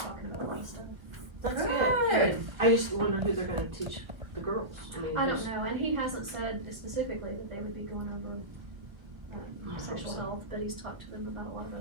about a lot of stuff. That's good. I just wonder who they're gonna teach the girls. I don't who's- know, and he hasn't said specifically that they would be going over, sexual health, but he's talked to them about a lot of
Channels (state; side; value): late; left; 1.5 ms